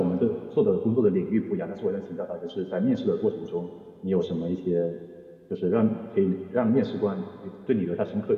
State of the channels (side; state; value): both; identical; correlation 1.00